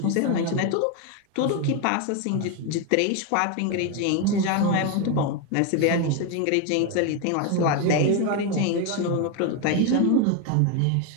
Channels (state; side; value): different; both; correlation 0.01